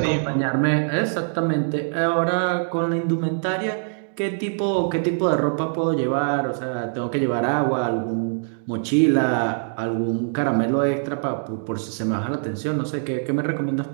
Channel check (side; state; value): left; silent; digital silence